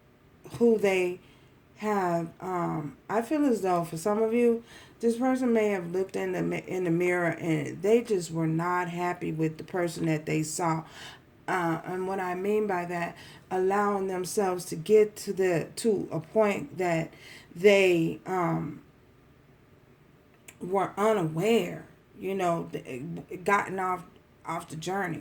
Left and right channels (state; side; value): identical; both; correlation 1.00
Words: who they have. I feel as though for some of you, this person may have looked in the mirror and they just were not happy with the person that they saw. And what I mean by that, allowing themselves to get to a point that they were unaware, gotten off the